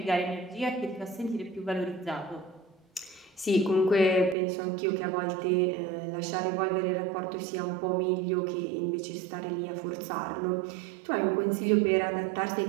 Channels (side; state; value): left; drops out; at 4.4 s